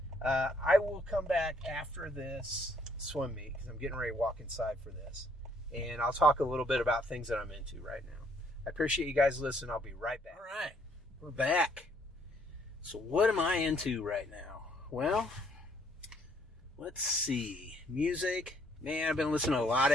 I will come back after this swim meet because I'm getting ready to walk inside for this, and I'll talk a little bit about things that I'm into right now. I appreciate you guys listening. I'll be right back. All right, we're back. So what am I into right now? Well, let's see. Music. Man, I've been listening to a lot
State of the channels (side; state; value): both; normal; correlation 0.66